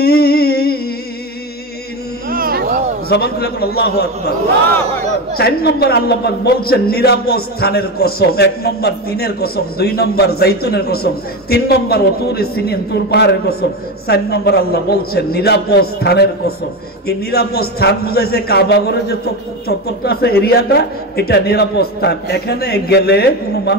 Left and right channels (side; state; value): both; normal; correlation 0.18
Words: জবান খুলে বলুন আল্লাহু আকবার। 4 নম্বর আল্লাহ পাক বলছেন নিরাপদ স্থানের কসম। 1 নম্বর তিনের কসম, 2 নম্বর জাইতুনের কসম, 3 নম্বর ওতুরে সিনিন তুর পাহাড়ের কসম, 4 নম্বর আল্লাহ বলছেন নিরাপদ স্থানের কসম। এই নিরাপদ স্থান বুঝাইছে কাবা ঘরের যে চত্বরটা আছে, এরিয়াটা, এটা নিরাপদ স্থান। এখানে গেলে কোনো